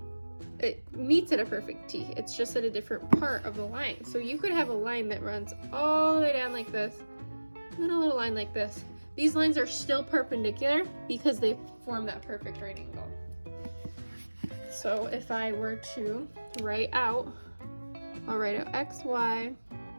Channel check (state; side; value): inverted; both; correlation -1.00